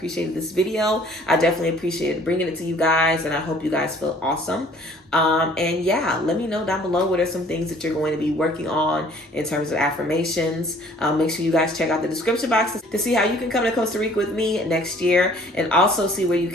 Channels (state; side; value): normal; both; correlation 0.55